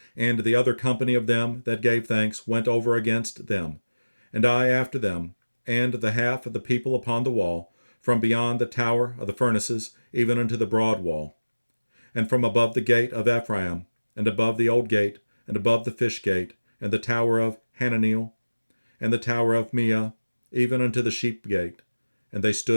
And the other company of them that gave thanks went over against them, and I after them, and the half of the people upon the wall, from beyond the tower of the furnaces, even unto the broad wall, and from above the gate of Ephraim, and above the old gate, and above the fish gate, and the tower of Hananeel, and the tower of Meah, even unto the sheep gate, and they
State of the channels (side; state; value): both; inverted; correlation -1.00